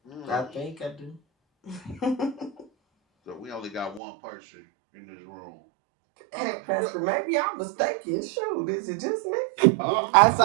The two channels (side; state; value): left; drops out; at 4.0 s